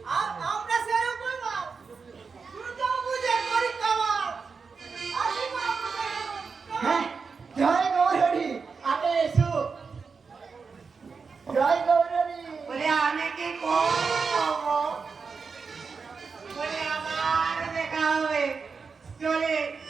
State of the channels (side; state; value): left; quieter; 5.1 dB